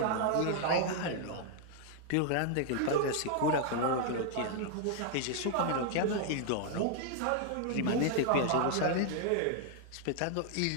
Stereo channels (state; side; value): different; both; correlation -0.01